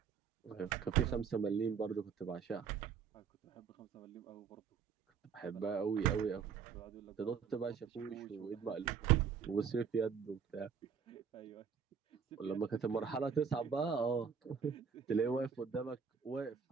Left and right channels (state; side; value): quieter; left; 6.7 dB